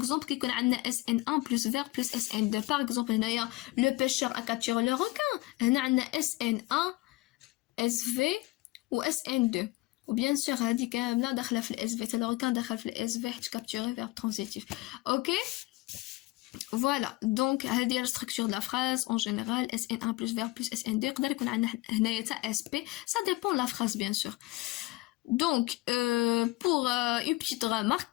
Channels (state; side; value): quieter; right; 20.7 dB